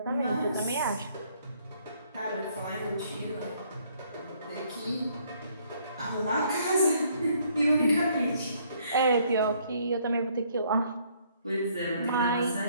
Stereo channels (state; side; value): inverted; both; correlation -0.65